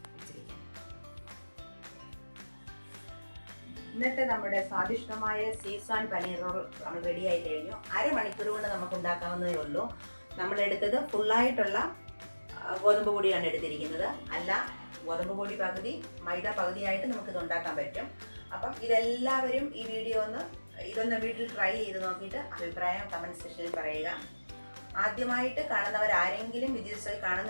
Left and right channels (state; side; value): inverted; both; correlation -1.00